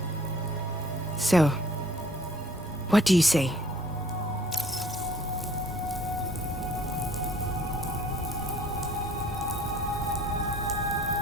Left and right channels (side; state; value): both; normal; correlation 0.56